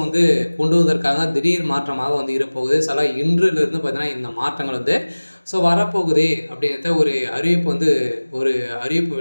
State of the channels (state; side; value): inverted; both; correlation -1.00